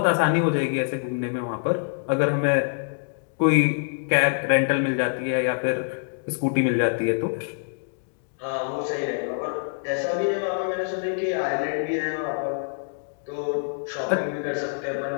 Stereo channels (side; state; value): right; silent; digital silence